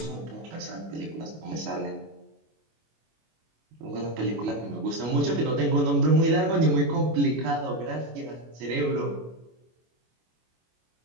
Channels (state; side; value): late; left; 25 ms